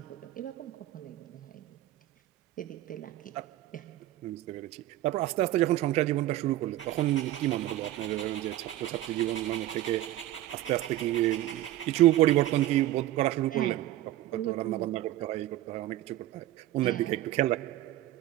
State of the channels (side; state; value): left; quieter; 14.6 dB